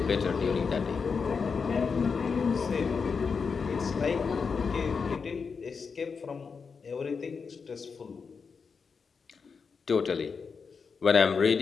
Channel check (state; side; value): quieter; right; 5.4 dB